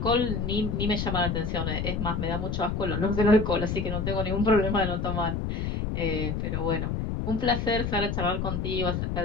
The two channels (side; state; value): left; noise; rumble, 1 dB below the sound